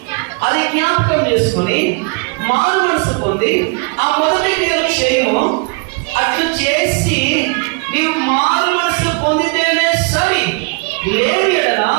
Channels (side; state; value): left; quieter; 32.5 dB